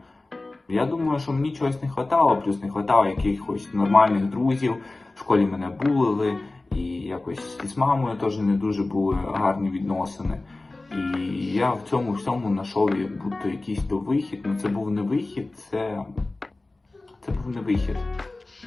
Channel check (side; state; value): right; quieter; 3.1 dB